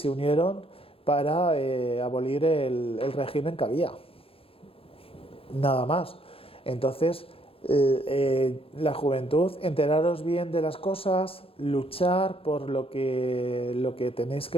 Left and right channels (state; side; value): late; right; 0.27 ms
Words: unieron para abolir el régimen que había, nada más. Entonces la juventud, enteraros bien de las cosas, luchar por lo que tenéis